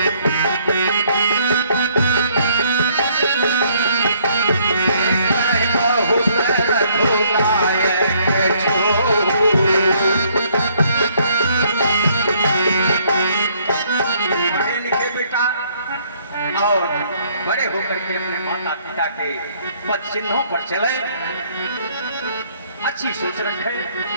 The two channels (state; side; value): inverted; both; correlation -0.65